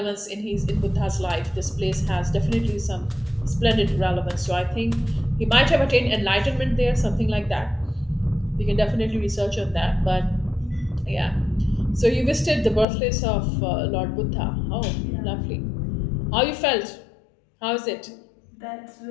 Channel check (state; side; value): drops out; right; at 12.9 s